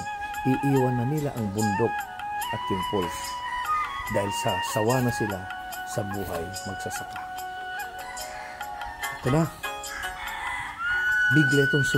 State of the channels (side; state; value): both; identical; correlation 1.00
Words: Iiwan na nila ang bundok at yung pools. Dahil sawa na sila sa buhay magsasaka. Ito na. Bigla itong